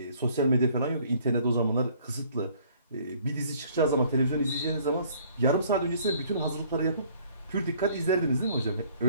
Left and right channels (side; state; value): both; inverted; correlation -0.59